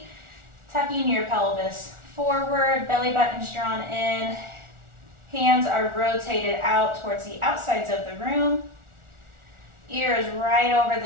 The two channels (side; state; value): left; late; 1.4 ms